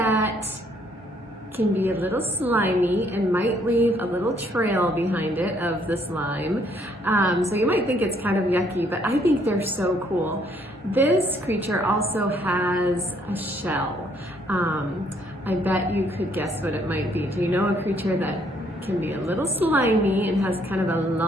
can be a little slimy and might leave a little trail behind it of the slime. So you might think it's kind of yucky, but I think they're so cool. This creature also has a shell. I bet you could guess what it might be. Do you know a creature that can be a little slimy and has kind of a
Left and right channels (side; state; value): both; normal; correlation 0.67